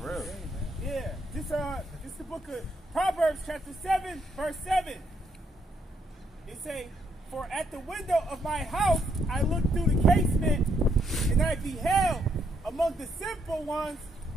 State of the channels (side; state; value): both; normal; correlation 0.74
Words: Yeah. This the book of Proverbs, chapter 7, verse 7. It say, for at the window of my house I looked through the casement, and I beheld among the simple ones,